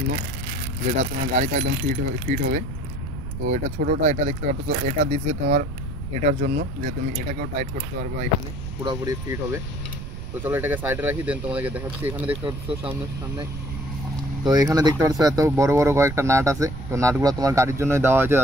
যেটা তোমার গাড়িতে একদম ফিট হবে। তো এটা ছোটোটা, এটা দেখতে পাচ্ছ, এটা দিছে তোমার এটার জন্য যে তুমি এটাকেও টাইট করতে পারবে, এখানে পুরোপুরি ফিট হবে। তো চলো এটাকে সাইডে রাখি, দেন তোমাদেরকে দেখাচ্ছি। এখানে দেখতে পাচ্ছ সামনে, তো এখানে দেখতে পাচ্ছ এত বড় বড় কয়েকটা নাট আছে। তো নাটগুলো তোমার গাড়ির জন্যই দেওয়া হয়েছে,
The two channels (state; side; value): noise; right; rumble, 8 dB below the sound